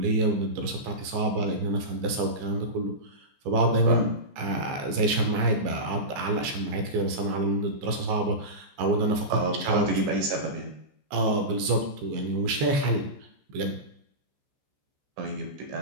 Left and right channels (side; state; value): left; late; 14 ms